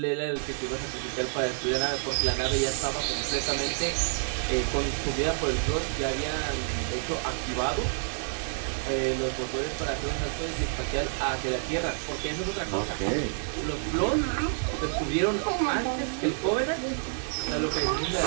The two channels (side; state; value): left; silent; digital silence